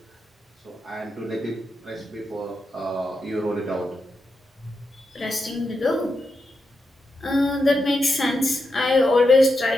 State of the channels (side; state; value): both; normal; correlation 0.86